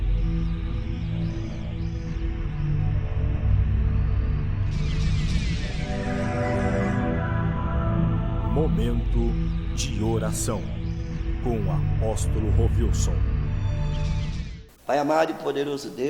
Momento de oração com o apóstolo Rovilson. Pai amado e poderoso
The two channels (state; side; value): identical; both; correlation 1.00